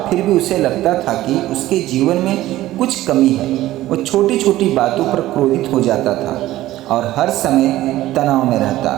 फिर भी उसे लगता था कि उसके जीवन में कुछ कमी है। वो छोटी छोटी बातों पर क्रोधित हो जाता था और हर समय तनाव में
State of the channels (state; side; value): quieter; left; 15.4 dB